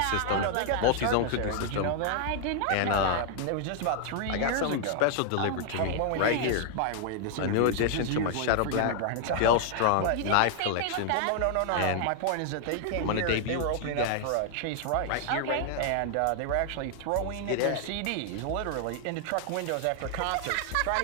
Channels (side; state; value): both; different; correlation 0.00